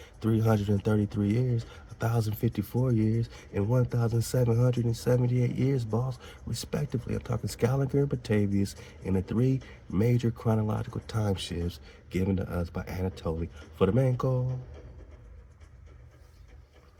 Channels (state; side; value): identical; both; correlation 1.00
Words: 333 years, 1,054 years, and 1,778 years, boss, respectively. I'm talking Scaliger and Batavius in the three major chronological time shifts given to us by Anatoly Fomenko.